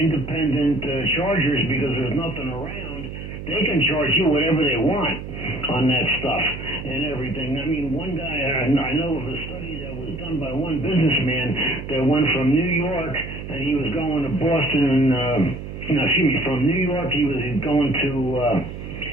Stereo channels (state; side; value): noise; right; hum, 9 dB below the sound